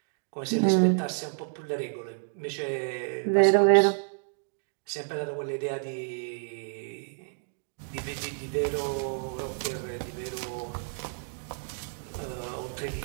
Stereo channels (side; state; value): left; silent; digital silence